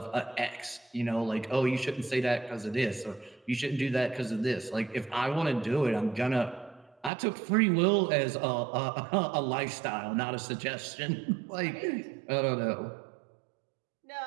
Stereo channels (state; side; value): drops out; left; at 7.1 s